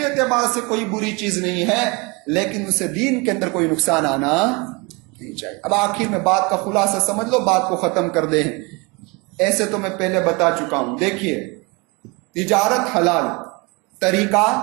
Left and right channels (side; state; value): left; quieter; 27.9 dB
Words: اعتبار سے کوئی بری چیز نہیں ہے, لیکن اسے دین کے اندر کوئی نقصان آنا نہیں چاہیے. اب آخر میں بات کا خلاصہ سمجھ لو, بات کو ختم کر دیں. ایسے تو میں پہلے بتا چکا ہوں. دیکھیے, تجارت حلال, طریقہ